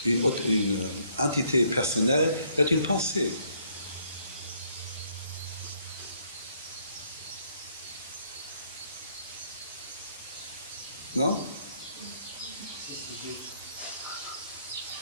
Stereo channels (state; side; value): inverted; both; correlation -0.68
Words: une entité personnelle est une pensée. Non?